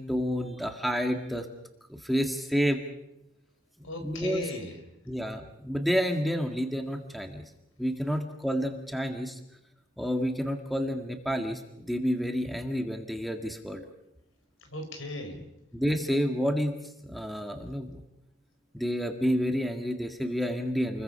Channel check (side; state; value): both; normal; correlation 0.88